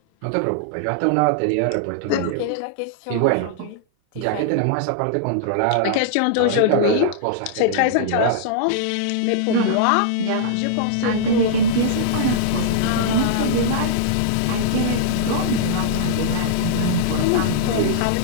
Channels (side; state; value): both; different; correlation -0.02